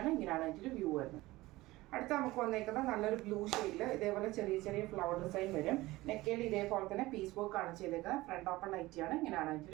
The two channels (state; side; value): quieter; left; 19.1 dB